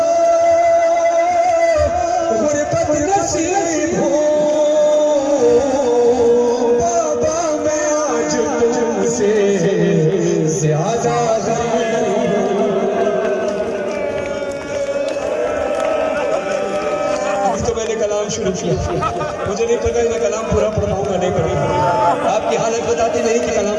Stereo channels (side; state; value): both; identical; correlation 1.00